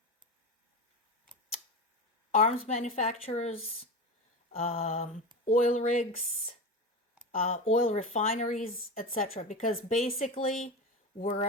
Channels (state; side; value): normal; both; correlation 0.23